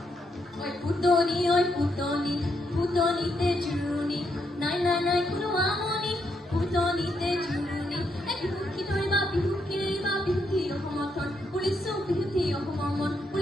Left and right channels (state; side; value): normal; both; correlation 0.78